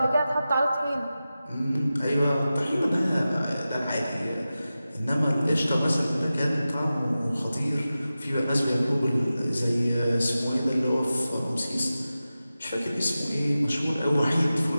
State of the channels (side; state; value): both; inverted; correlation -0.94